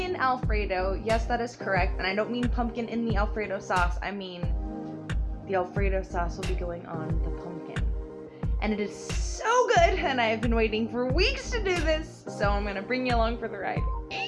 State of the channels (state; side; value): identical; both; correlation 1.00